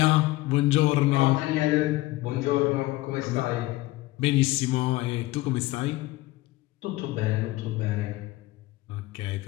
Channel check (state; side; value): quieter; right; 18.9 dB